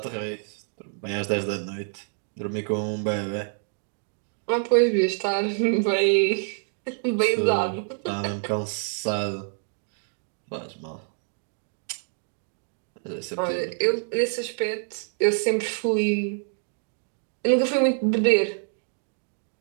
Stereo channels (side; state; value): left; silent; 60 dB below the other